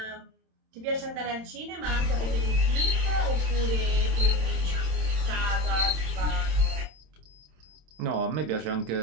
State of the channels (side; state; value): left; late; 27 ms